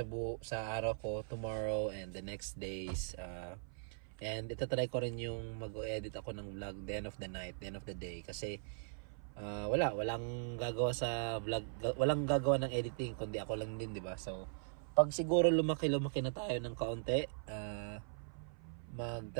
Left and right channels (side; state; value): left; silent; 51 dB below the other